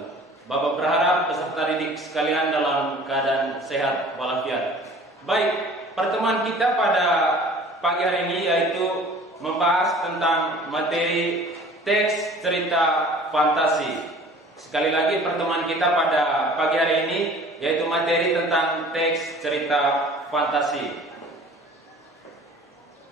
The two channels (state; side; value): normal; both; correlation 0.47